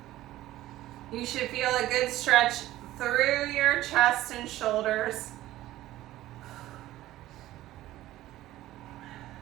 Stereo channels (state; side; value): quieter; left; 15.3 dB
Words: You should feel a good stretch through your chest and shoulders.